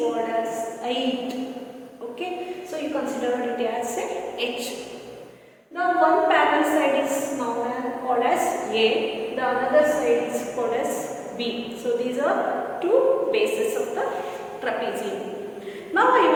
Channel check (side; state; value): both; identical; correlation 1.00